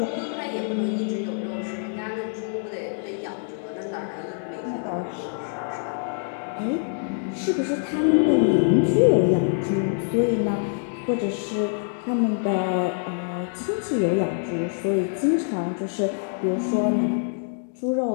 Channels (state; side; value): silent; right; digital silence